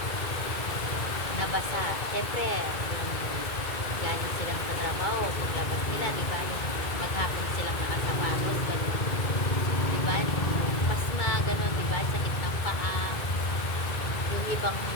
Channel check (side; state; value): right; late; 2.3 ms